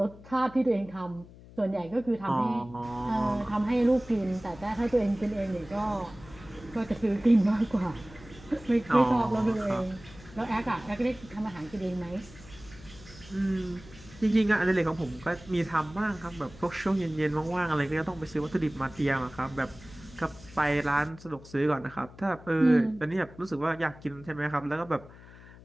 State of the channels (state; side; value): noise; left; hum, 20 dB below the sound